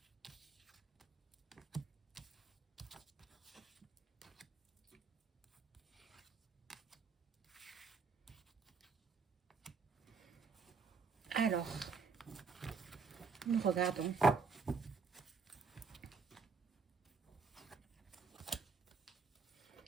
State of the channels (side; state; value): left; quieter; 5.1 dB